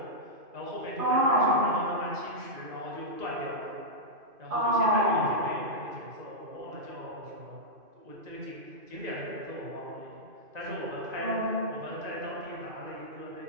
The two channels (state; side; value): late; left; 2.5 ms